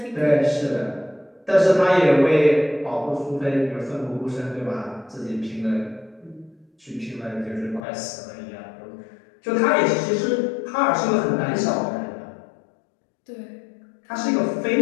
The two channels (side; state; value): right; drops out; at 7.8 s